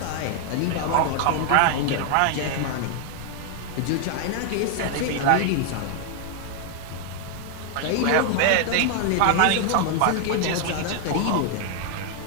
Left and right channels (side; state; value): both; different; correlation 0.00